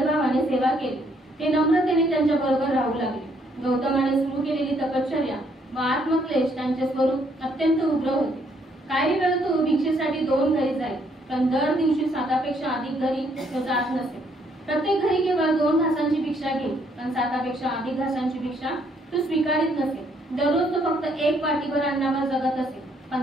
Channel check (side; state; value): both; normal; correlation 0.69